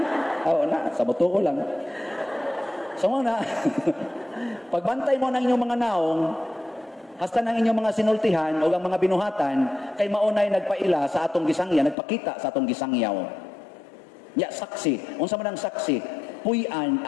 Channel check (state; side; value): drops out; right; at 12.0 s